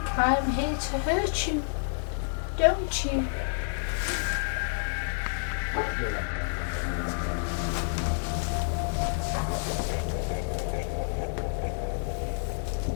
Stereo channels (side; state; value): right; silent; digital silence